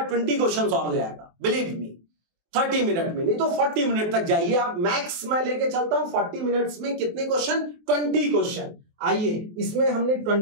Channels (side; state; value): left; late; 24 ms